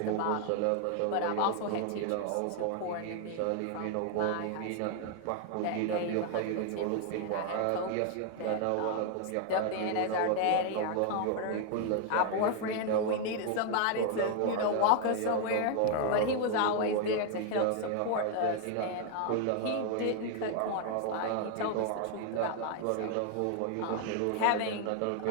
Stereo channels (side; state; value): both; different; correlation 0.00